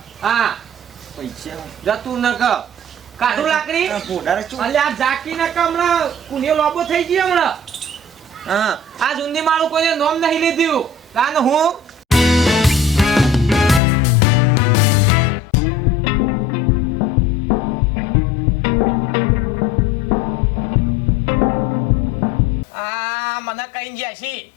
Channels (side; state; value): right; drops out; at 13.8 s